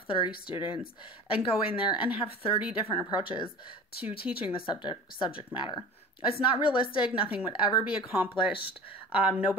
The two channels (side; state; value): both; normal; correlation 0.39